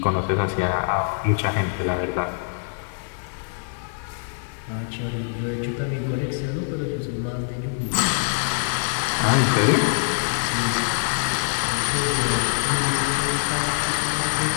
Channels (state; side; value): silent; right; digital silence